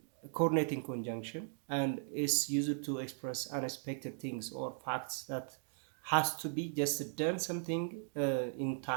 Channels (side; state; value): left; silent; digital silence